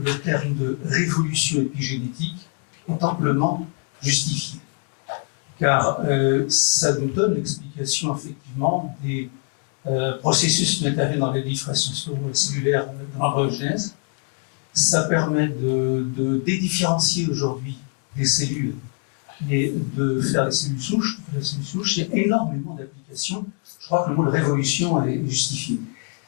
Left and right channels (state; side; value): quieter; right; 38.3 dB